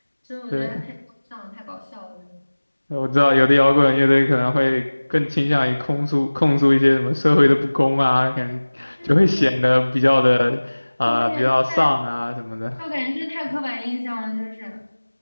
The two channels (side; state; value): both; inverted; correlation -1.00